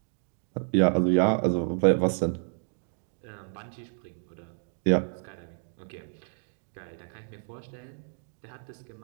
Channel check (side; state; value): left; silent; digital silence